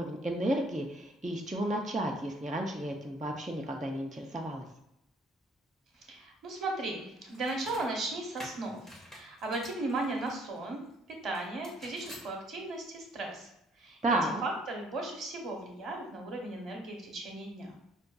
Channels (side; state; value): both; normal; correlation 0.62